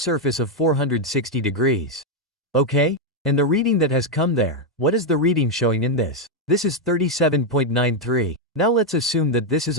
of 460 degrees. Okay? And the reading that has come there, what is the reading showing in this? This is 37.93. Now let's assume that this is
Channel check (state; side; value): normal; both; correlation 0.02